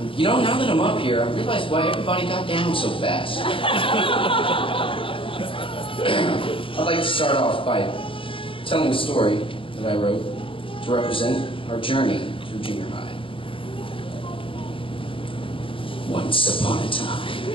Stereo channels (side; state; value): right; late; 0.25 ms